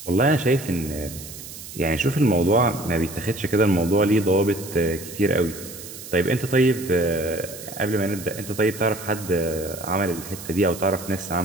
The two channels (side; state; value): right; noise; hiss, 13 dB below the sound